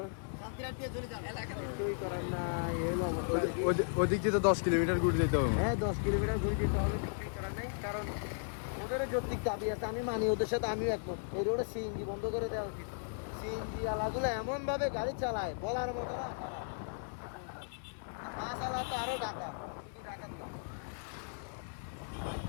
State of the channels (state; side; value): silent; right; digital silence